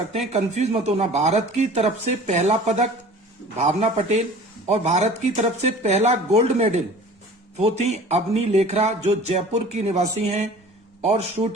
हैं, कंफ्यूज मत होना। भारत की तरफ से पहला पदक भावना पटेल और भारत की तरफ से पहला गोल्ड मेडल वो थी अवनी लेखरा, जो जयपुर की निवासी हैं और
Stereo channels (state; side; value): normal; both; correlation 0.44